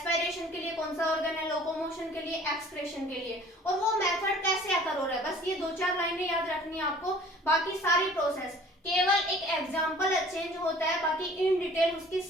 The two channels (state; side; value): normal; both; correlation 0.50